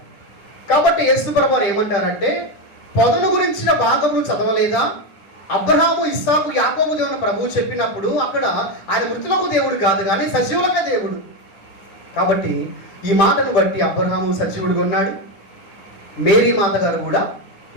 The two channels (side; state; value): right; late; 10 ms